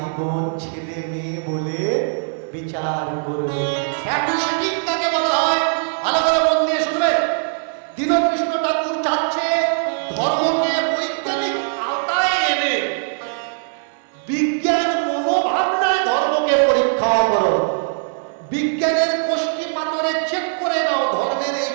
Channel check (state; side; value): silent; left; digital silence